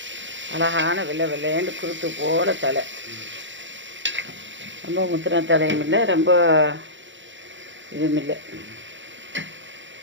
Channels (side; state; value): left; late; 0.54 ms